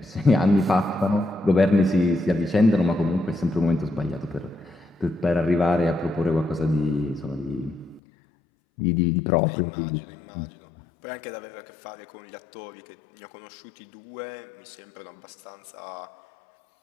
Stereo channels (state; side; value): drops out; right; at 8.0 s